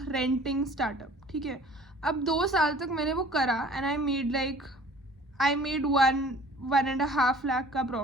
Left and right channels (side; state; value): both; normal; correlation 0.49